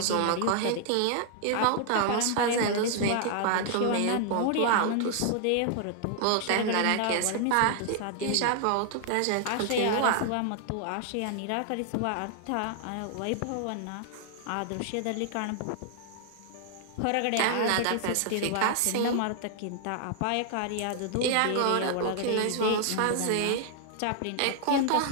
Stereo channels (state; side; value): different; both; correlation 0.00